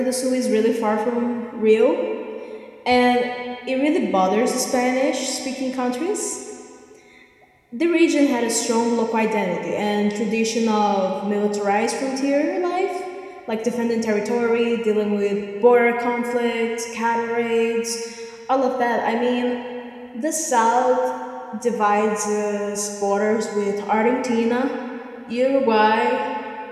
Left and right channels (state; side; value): identical; both; correlation 1.00